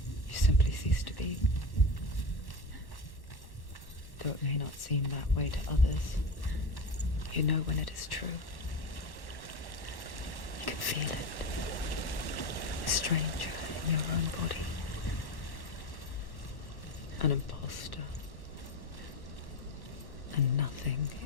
you simply cease to be. Though it may not seem that way to others, you know when it is true. You can feel it. A stranger in your own body. An imposter. And nothing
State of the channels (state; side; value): late; right; 1.1 ms